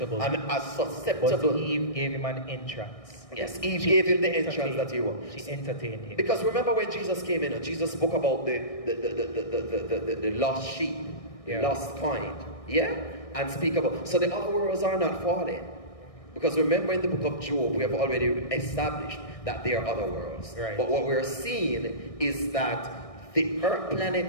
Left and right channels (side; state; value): right; late; 1.6 ms